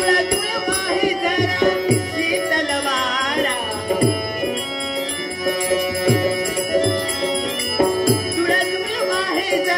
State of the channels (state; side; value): identical; both; correlation 1.00